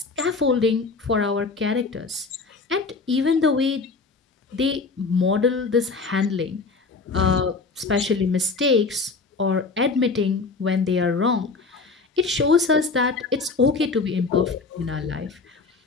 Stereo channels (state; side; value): quieter; right; 4.2 dB